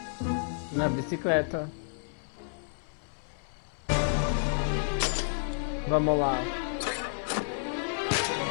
Na bicicleta. Vamos lá.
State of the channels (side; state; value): right; silent; 57 dB below the other